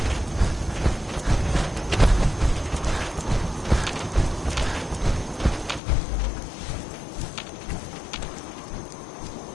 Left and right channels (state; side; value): drops out; right; at 5.8 s